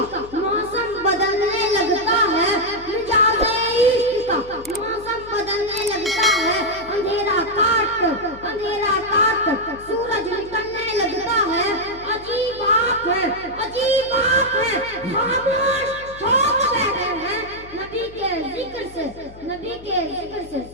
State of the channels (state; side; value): noise; left; hum, 19 dB below the sound